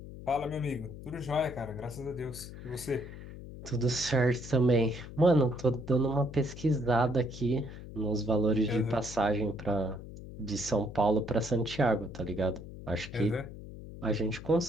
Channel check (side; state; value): left; noise; hum, 13 dB below the sound